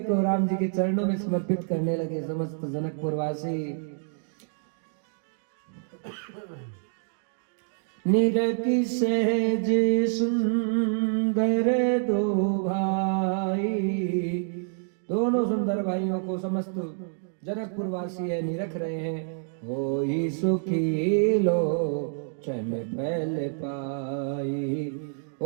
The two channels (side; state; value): left; silent; digital silence